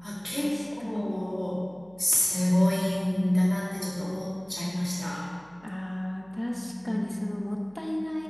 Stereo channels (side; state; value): right; noise; hum, 28 dB below the sound